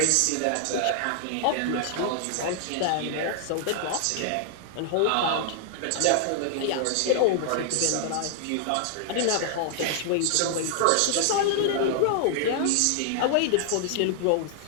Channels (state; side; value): different; both; correlation 0.00